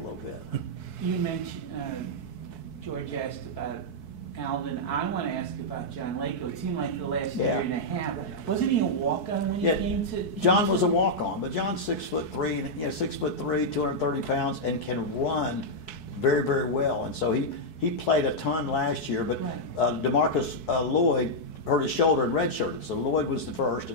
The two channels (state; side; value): late; right; 4.6 ms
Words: little bit. You mentioned, George asked about Alvin. I want to ask about John Lako. It seemed like for the last year and a half. Wasn't he a walk-on when he came to? John was a walk-on, but John's 6'3", 6'3", 230 pounds, and can run very, very well. And so he played a ton last year, but DeMarcus Lloyd hurt his shoulder and redshirted. So Lloyd was the first,